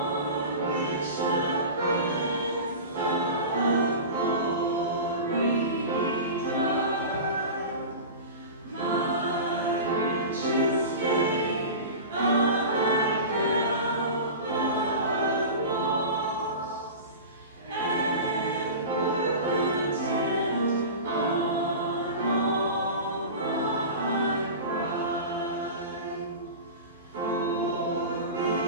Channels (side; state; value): both; inverted; correlation -0.31